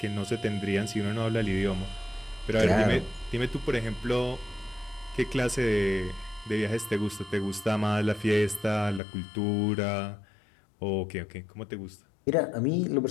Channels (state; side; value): drops out; right; at 9.0 s